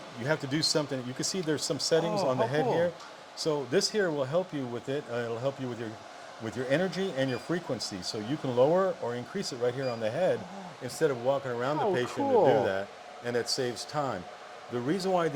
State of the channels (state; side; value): identical; both; correlation 1.00